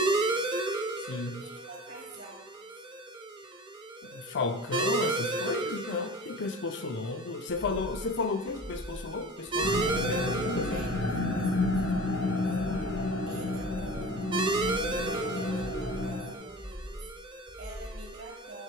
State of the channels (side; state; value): both; normal; correlation 0.37